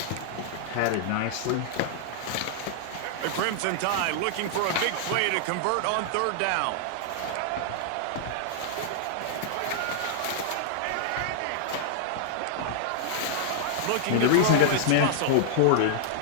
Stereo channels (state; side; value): different; both; correlation -0.01